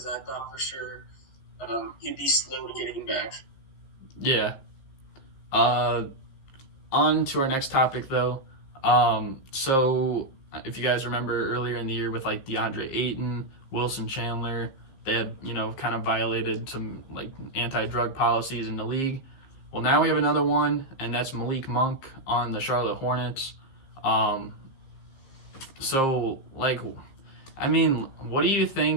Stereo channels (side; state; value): right; late; 15 ms